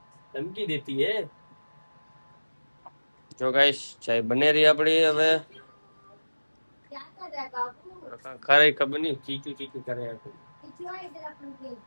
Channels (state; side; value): inverted; both; correlation -1.00